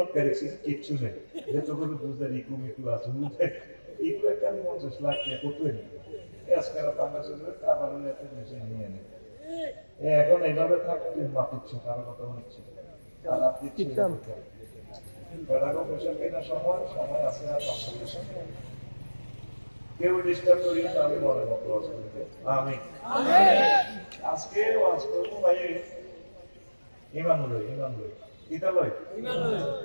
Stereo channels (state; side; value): inverted; both; correlation -1.00